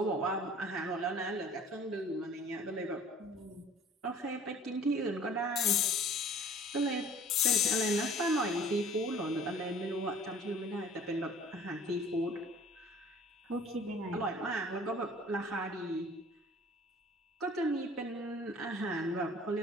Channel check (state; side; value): normal; both; correlation 0.49